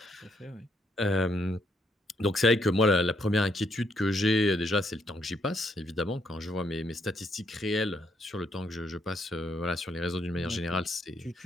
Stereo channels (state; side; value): normal; both; correlation 0.73